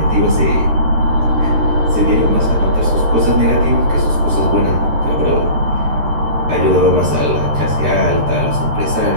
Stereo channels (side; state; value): left; late; 13 ms